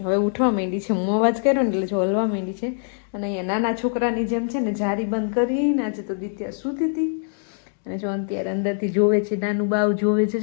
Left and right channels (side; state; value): right; silent; digital silence